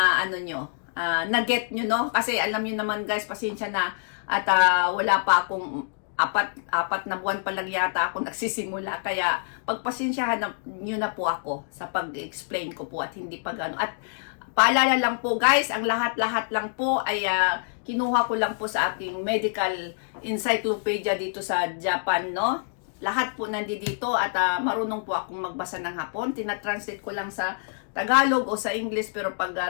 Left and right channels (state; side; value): silent; right; digital silence